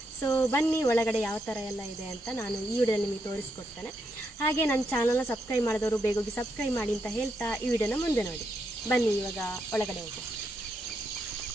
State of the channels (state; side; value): normal; both; correlation 0.80